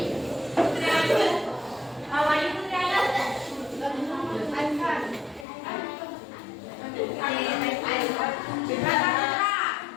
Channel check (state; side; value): drops out; right; at 5.5 s